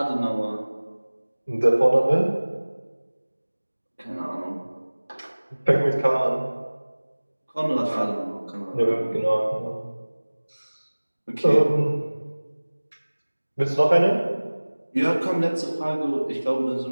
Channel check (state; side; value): inverted; both; correlation -1.00